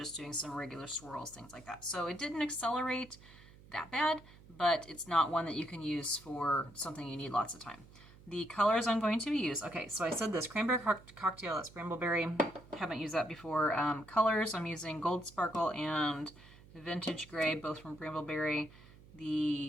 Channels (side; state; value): right; noise; hum, 22 dB below the sound